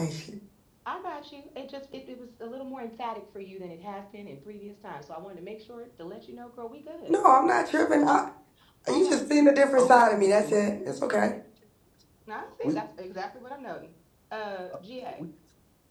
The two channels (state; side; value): identical; both; correlation 1.00